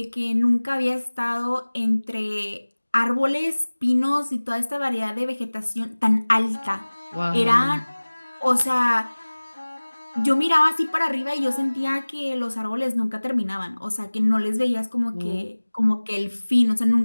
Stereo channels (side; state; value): both; inverted; correlation -1.00